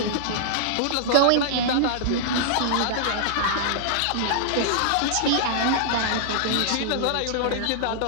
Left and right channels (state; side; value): different; both; correlation -0.01